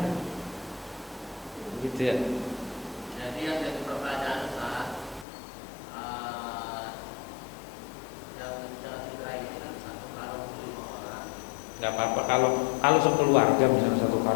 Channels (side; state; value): right; drops out; at 5.2 s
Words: Gitu ya. Jadi yang jadi pertanyaan saat yang dicerai ini kan satu karung 5 orang. Nggak apa-apa kalau sekeluarga misalnya satu